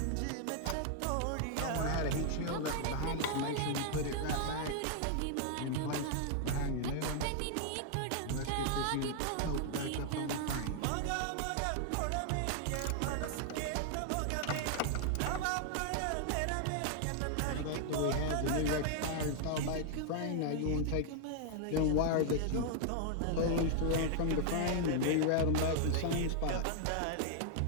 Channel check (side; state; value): both; different; correlation 0.00